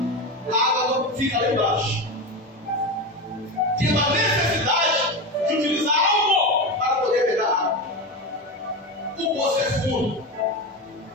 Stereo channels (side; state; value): both; normal; correlation 0.20